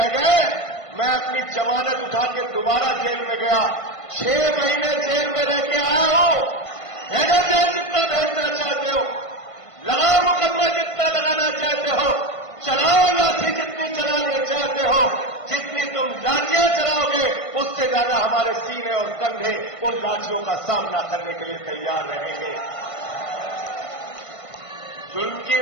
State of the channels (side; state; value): right; late; 1.5 ms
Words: गए। मैं अपनी जमानत उठा के दोबारा जेल में गया। 6 महीने जेल में रह के आया हूं। भेजो जेल जितना भेजना चाहते हो, लगाओ मुकदमा जितना लगाना चाहते हो, चलाओ लाठी जितनी चलाना चाहते हो, जितनी तुम लाठियां चलाओगे उससे ज्यादा हमारे सीने और कंधे उन लाठियों का सामना करने के लिए तैयार रहेंगे। जुल्म की